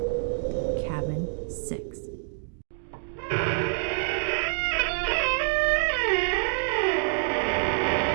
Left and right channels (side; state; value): left; silent; digital silence